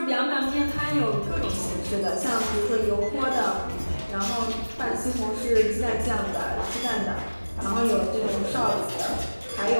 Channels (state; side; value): inverted; both; correlation -1.00